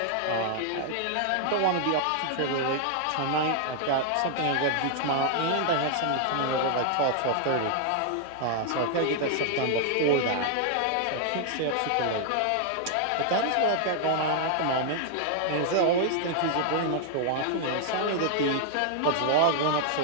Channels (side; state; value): both; different; correlation 0.00